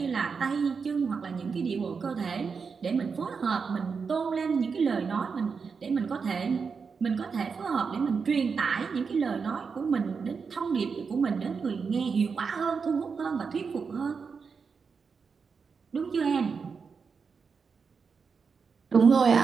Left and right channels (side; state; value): left; quieter; 5.5 dB